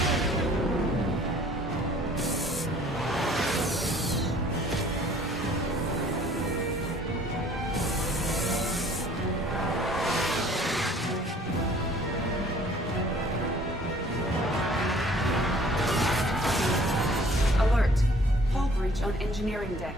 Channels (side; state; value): both; normal; correlation 0.54